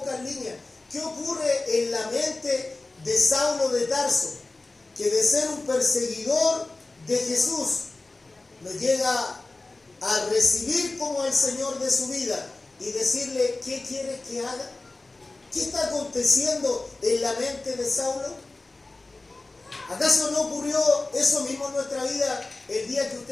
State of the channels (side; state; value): right; quieter; 3.2 dB